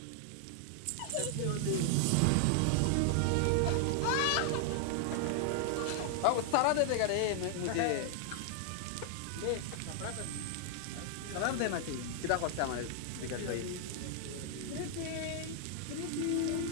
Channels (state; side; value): different; both; correlation 0.00